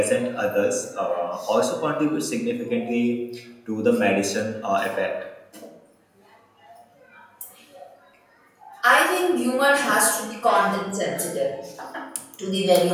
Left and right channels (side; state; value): both; identical; correlation 1.00